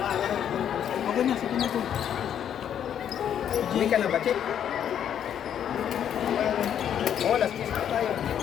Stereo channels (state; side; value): quieter; right; 9.3 dB